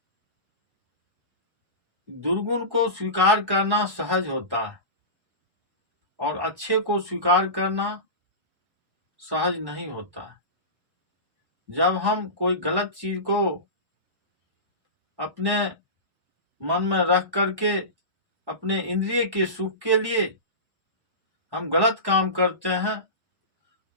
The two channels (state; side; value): late; left; 1.1 ms